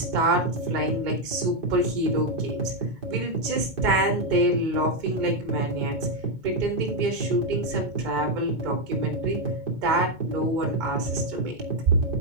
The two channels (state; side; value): late; left; 2.2 ms